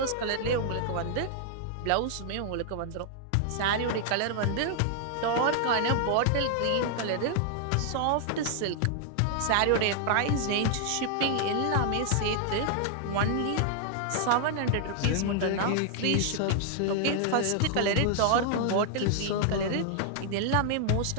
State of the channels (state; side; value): different; both; correlation 0.00